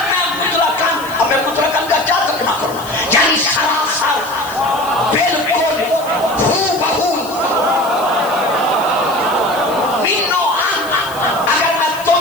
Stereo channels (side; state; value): left; noise; hiss, 16 dB below the sound